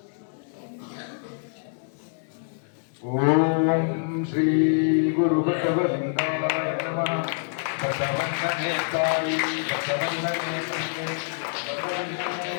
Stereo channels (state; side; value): silent; right; digital silence